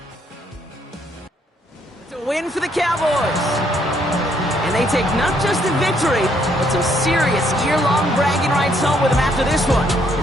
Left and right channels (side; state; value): both; normal; correlation 0.70